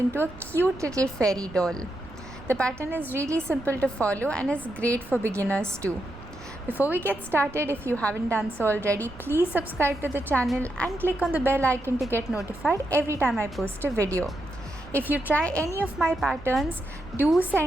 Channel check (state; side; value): noise; right; rumble, 18 dB below the sound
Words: a cute little fairy doll. The pattern is really simple to follow and is great for beginners too. Before we get started, if you haven't done so already, please subscribe to the channel and click on the bell icon to get notified every time I post a video. If you try any of my patterns, do